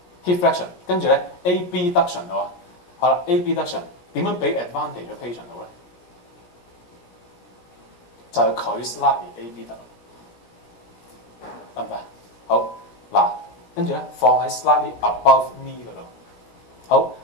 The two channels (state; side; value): late; right; 17 ms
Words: ？hip flexion， 跟住咧 AB duction 喎。好啦 ，AB duction 點樣俾 advantage 嘅 patient 好咧？就係佢 slightly AB 得唔得？好嗱，跟住咧放喺 slightly above knee 嗰度。好